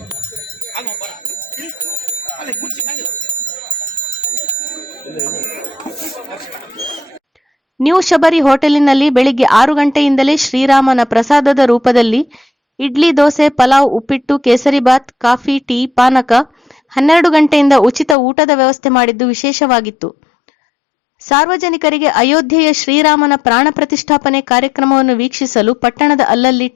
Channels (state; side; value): drops out; right; at 18.2 s